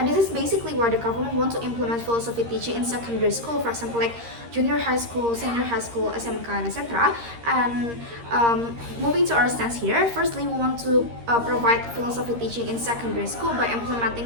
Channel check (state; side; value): late; left; 13 ms